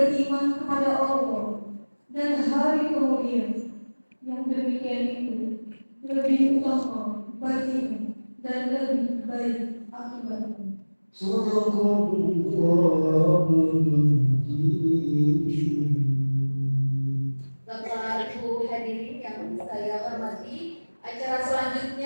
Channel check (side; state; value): both; inverted; correlation -1.00